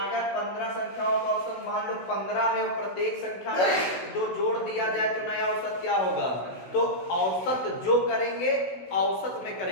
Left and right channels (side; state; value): right; late; 16 ms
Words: 15 संख्याओं का औसत मान लो 15 है और प्रत्येक संख्या में 2 जोड़ दिया जाए तो नया औसत क्या होगा। तो औसत जो करेंगे औसत में